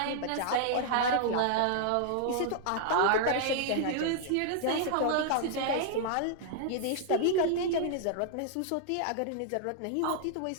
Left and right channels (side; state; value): both; different; correlation -0.01